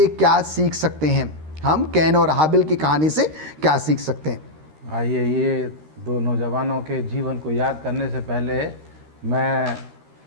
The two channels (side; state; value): left; late; 13 ms